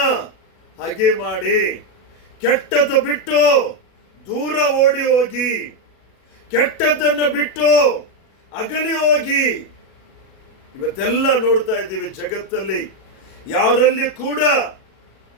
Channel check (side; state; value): right; late; 37 ms